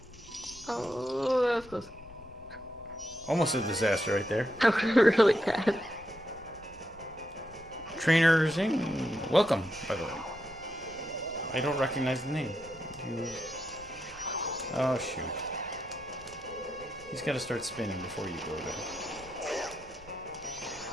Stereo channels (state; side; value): noise; left; rumble, 22 dB below the sound